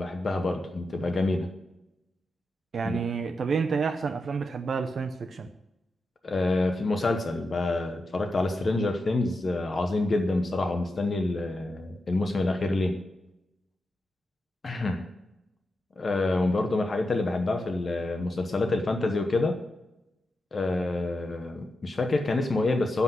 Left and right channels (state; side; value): normal; both; correlation 0.88